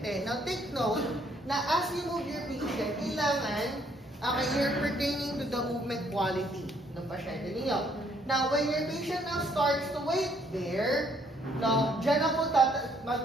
Now, take note na as you move your patient, kailangan you're pertaining to the movement quality ng pasyente ninyo. Now, when your patient now starts to wait there, now, dyan na po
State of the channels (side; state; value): both; normal; correlation 0.67